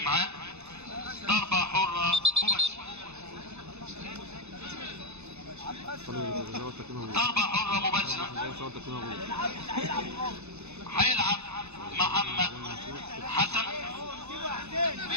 ضربه حره مباشره، ضربة حرة مباشرة. هيلعب محمد حسن،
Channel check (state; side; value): late; left; 0.81 ms